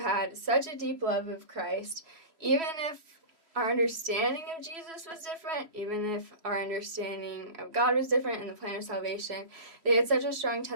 such a deep love of Christ, even if our understanding of Jesus was different, even if our understanding of God was different and the plan of salvation, they had such a strong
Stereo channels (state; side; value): late; left; 3.1 ms